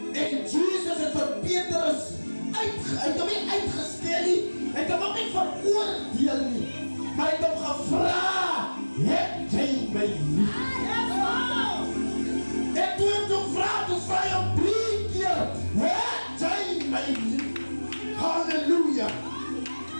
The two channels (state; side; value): inverted; both; correlation -1.00